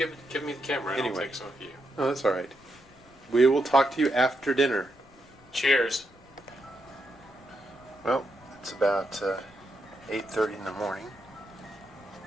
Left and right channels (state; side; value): noise; left; rumble, 27 dB below the sound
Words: me the camera and Anyway. I'll take some of you. Oh, that's all right. We will talk to you after dinner. Cheers. Well, it's about 8:30 in the morning.